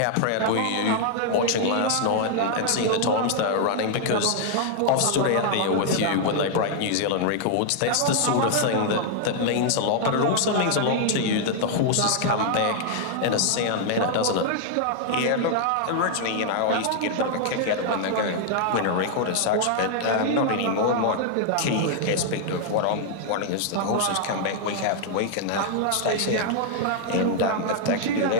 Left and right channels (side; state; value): both; different; correlation 0.00